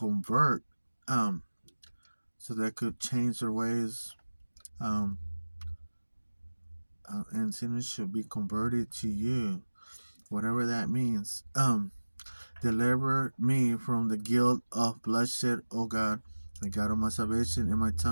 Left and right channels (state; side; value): inverted; both; correlation -1.00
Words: so they could change their ways, um, and sinners should be converted to you, whatever that means. Deliver me from the guilt of bloodshed, O God, the God of my salvation, and my